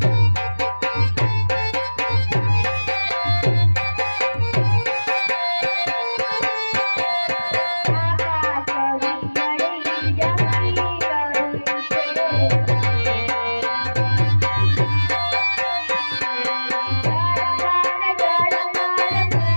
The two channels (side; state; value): both; inverted; correlation -1.00